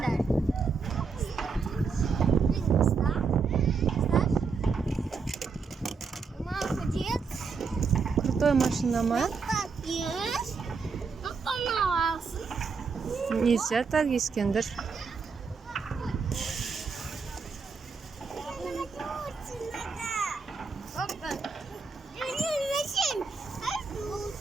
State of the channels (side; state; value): left; quieter; 5.0 dB